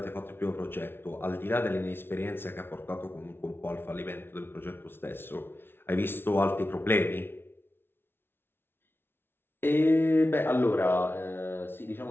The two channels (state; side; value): late; right; 0.11 ms